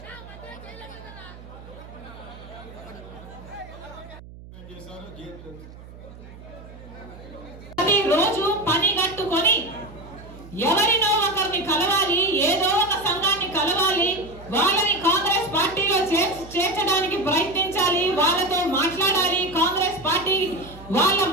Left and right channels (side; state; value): right; noise; hum, 17 dB below the sound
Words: రోజు పని కట్టుకొని ఎవరినో ఒకరిని కలవాలి, ఏదో ఒక సంఘాన్ని కలవాలి, వాళ్ళని కాంగ్రెస్ పార్టీలో చేర్చడానికి ప్రయత్నించాలి, వాళ్ళతో మాట్లాడాలి, కాంగ్రెస్ పార్టీ వాళ్ళ